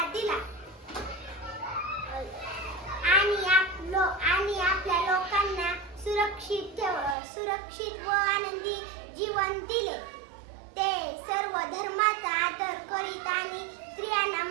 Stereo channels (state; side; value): drops out; left; at 7.2 s